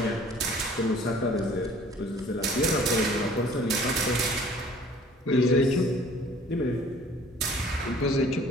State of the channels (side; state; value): both; normal; correlation 0.52